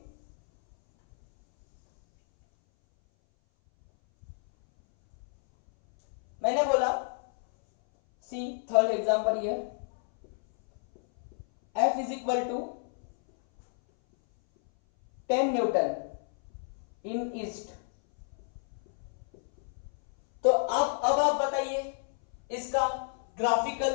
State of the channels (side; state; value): right; silent; 58 dB below the other